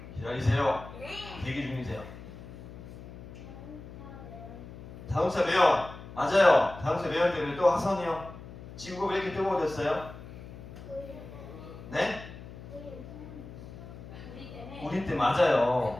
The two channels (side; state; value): left; noise; hum, 14 dB below the sound